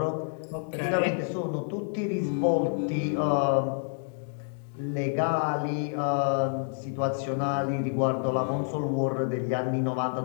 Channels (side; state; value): right; silent; digital silence